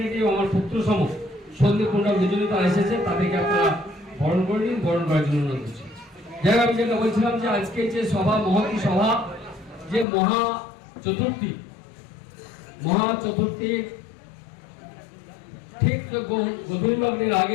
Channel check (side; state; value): right; drops out; at 10.1 s